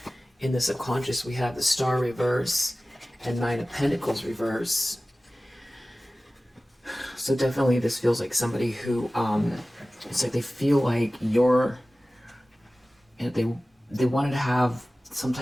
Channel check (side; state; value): both; normal; correlation 0.97